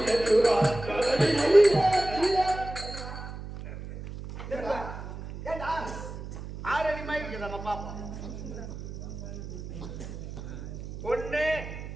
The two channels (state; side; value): noise; right; hum, 10 dB below the sound